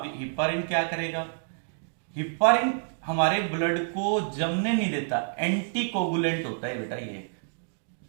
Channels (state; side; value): silent; left; digital silence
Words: हिपारिन क्या करेगा? हिपारिन हमारे ब्लड को जमने नहीं देता, एंटीकोगुलेंट होता है बेटा ये एक